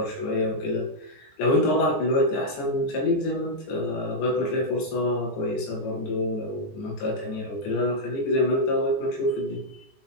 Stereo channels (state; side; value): late; right; 14 ms